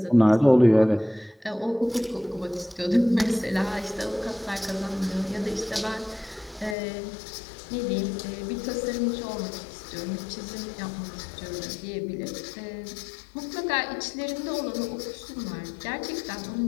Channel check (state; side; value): drops out; right; at 6.8 s